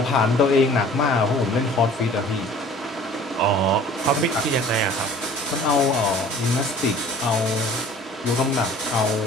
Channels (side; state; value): both; normal; correlation 0.48